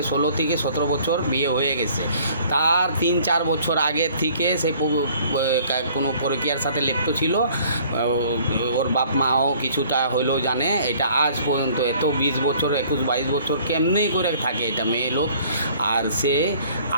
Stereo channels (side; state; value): both; inverted; correlation -0.55